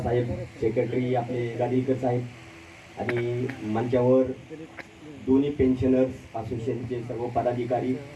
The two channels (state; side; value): identical; both; correlation 1.00